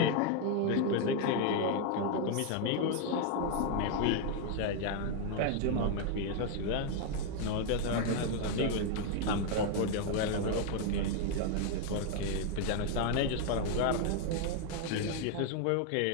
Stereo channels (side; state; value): both; different; correlation 0.01